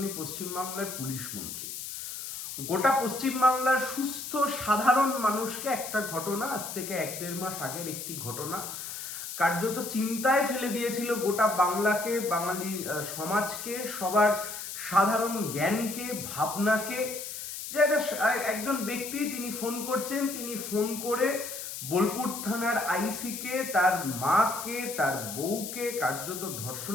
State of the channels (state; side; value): noise; left; hiss, 8 dB below the sound